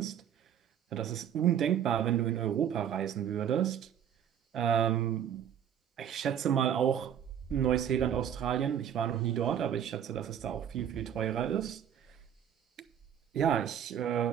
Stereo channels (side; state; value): left; quieter; 9.3 dB